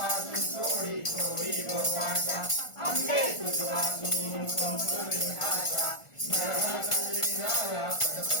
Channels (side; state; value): right; late; 1.5 ms